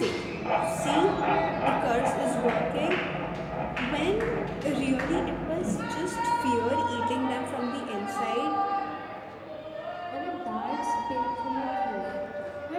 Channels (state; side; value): identical; both; correlation 1.00